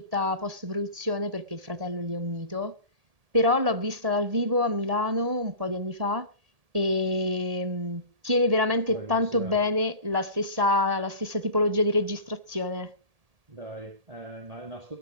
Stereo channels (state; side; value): late; left; 1.8 ms